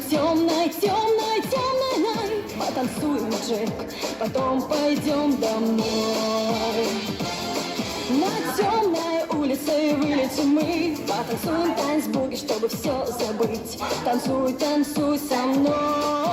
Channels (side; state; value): both; identical; correlation 1.00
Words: темной, темной, темной. Потанцуем, Джек, потом пойдем домой. На темной улице вылетим мы, потанцуем танцбуги, чтобы все забыть. Танцуй, танцуй со